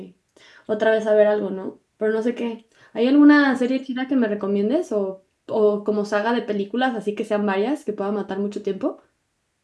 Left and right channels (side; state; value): both; identical; correlation 1.00